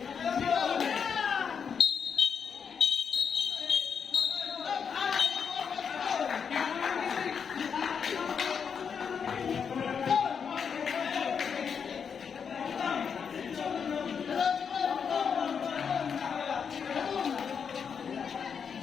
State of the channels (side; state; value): right; quieter; 6.7 dB